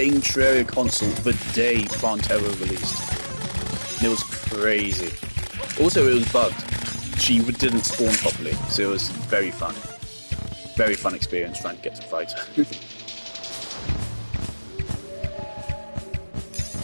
Terraria console the day Terraria released. It was crazy. Also, it was bugged. She didn't spawn properly, so it was very fun. Very fun experience trying to get to fight her.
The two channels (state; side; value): inverted; both; correlation -1.00